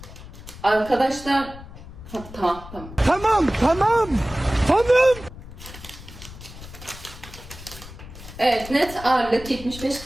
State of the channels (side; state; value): left; noise; rumble, 15 dB below the sound